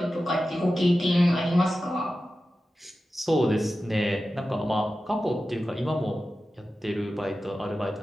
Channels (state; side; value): normal; both; correlation 0.93